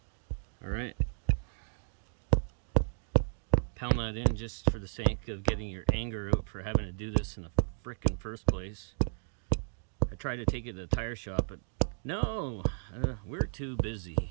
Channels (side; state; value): left; silent; digital silence